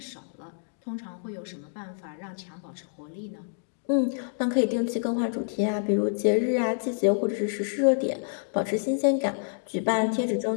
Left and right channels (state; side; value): silent; right; digital silence